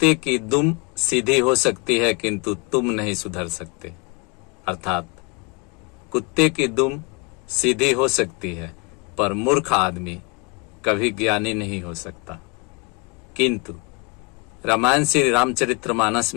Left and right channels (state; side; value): quieter; right; 30.4 dB